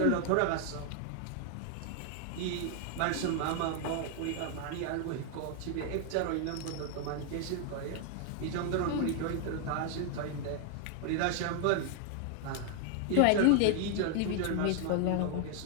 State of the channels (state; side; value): different; both; correlation 0.00